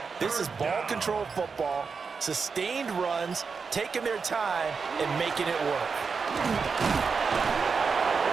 This is ball control football, sustained runs, taking their time, and making it work.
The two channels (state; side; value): quieter; left; 5.3 dB